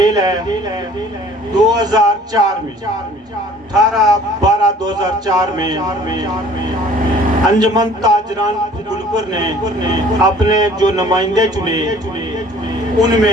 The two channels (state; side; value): normal; both; correlation 0.52